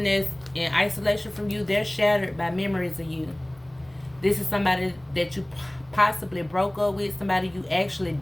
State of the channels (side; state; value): right; noise; rumble, 29 dB below the sound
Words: that's in isolation from you, they're shattered by memories of you. This is somebody that you possibly broke up with, somebody you actually